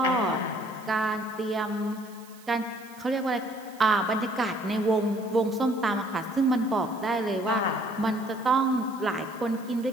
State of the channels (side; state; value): right; noise; hiss, 23 dB below the sound